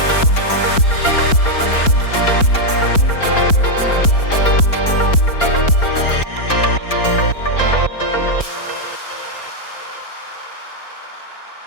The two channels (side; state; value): right; late; 4.3 ms